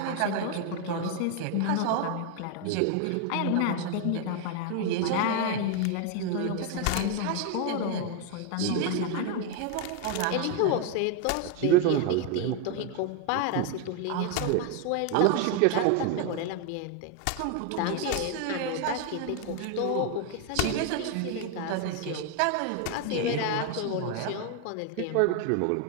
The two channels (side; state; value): both; different; correlation 0.01